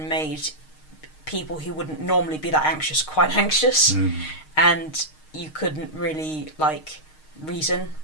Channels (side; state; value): right; late; 6.5 ms